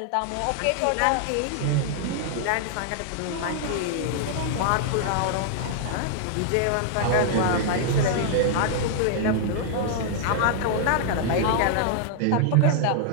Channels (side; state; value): both; different; correlation -0.01